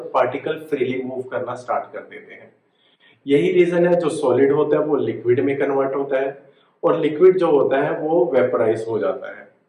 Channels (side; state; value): both; identical; correlation 1.00